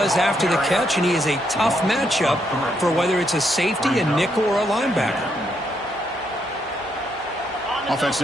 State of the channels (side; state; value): both; normal; correlation 0.76